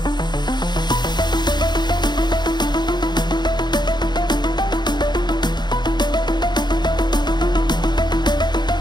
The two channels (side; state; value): right; late; 0.21 ms